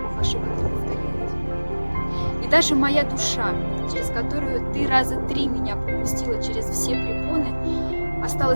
Бог ошибок не повторяет. И даже моя душа, через которую ты раза 3 меня пропустила через все препоны,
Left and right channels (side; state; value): both; inverted; correlation -1.00